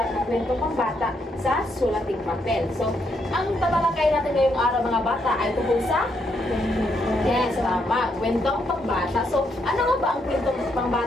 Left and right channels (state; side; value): normal; both; correlation 0.76